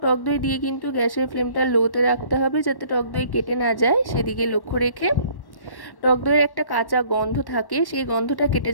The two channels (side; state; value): right; late; 1.1 ms